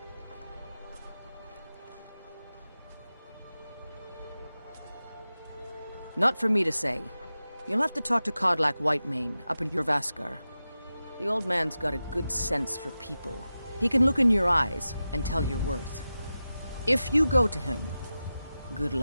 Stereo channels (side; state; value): both; inverted; correlation -0.93